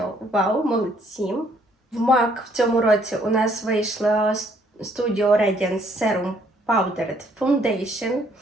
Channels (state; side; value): normal; both; correlation 0.66